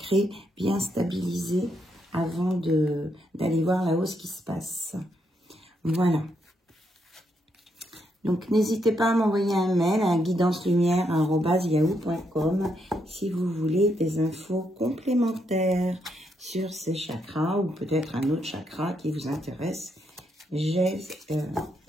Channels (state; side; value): normal; both; correlation 0.78